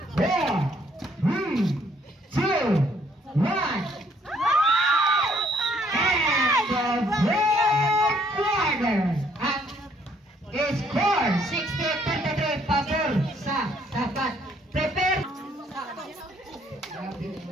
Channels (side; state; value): both; normal; correlation 0.66